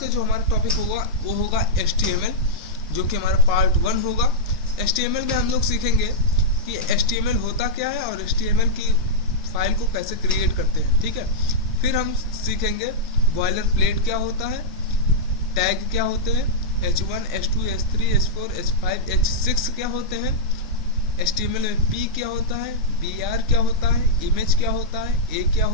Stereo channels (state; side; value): normal; both; correlation -0.08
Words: जो हमारा टॉपिक होगा वो होगा HTML, जो कि हमारा पार्ट 1 होगा। HTML में हम लोग सीखेंगे कि HTML होता क्या है और HTML की फाइल को कैसे क्रिएट करते हैं, ठीक है। फिर हम सीखेंगे बॉयलर प्लेट क्या होता है, टैग क्या होते हैं, H1, H2, H3, H4, H5, H6 क्या होते हैं, HTML में P क्या होता है, BR क्या होता है, इमेज क्या होता है, A क्या